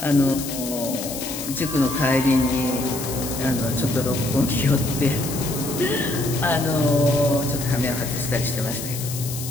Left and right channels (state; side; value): noise; left; hiss, 8 dB below the sound